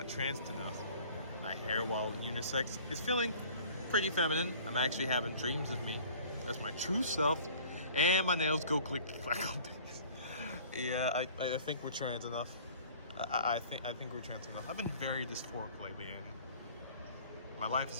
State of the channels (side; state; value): both; inverted; correlation -0.48